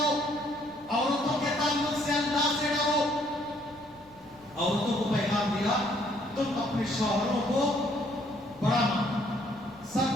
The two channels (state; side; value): noise; left; rumble, 29 dB below the sound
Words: عورتوں کے تعلق سے اللہ سے ڈرو۔ عورتوں کو پیغام دیا تم اپنے شوہروں کو بڑا مانو،